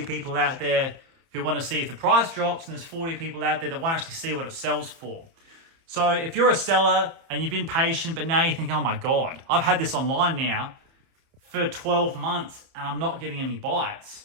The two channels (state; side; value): late; left; 30 ms